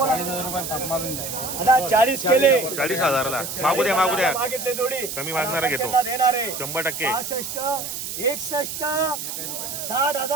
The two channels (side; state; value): right; noise; hiss, 6 dB below the sound